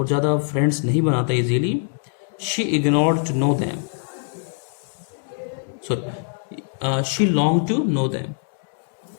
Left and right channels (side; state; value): right; silent; digital silence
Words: ज़्यादा फ्रेंड्स नहीं बनाता easily. She ignored to know them, sorry she long to know them,